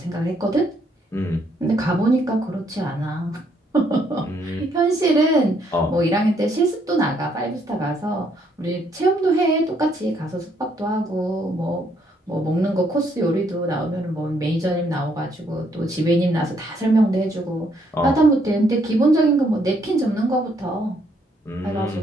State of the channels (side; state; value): both; normal; correlation 0.71